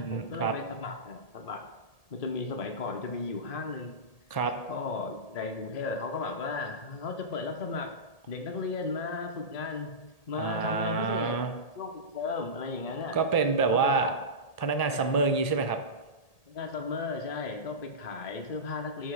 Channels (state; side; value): late; right; 1.8 ms